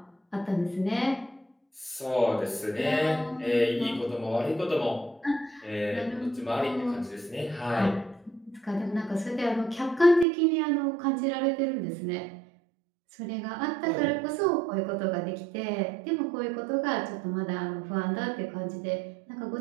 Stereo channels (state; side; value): drops out; left; at 10.2 s